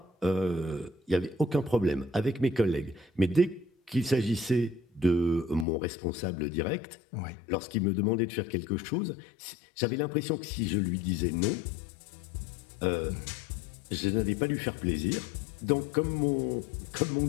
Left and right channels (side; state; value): right; drops out; at 5.7 s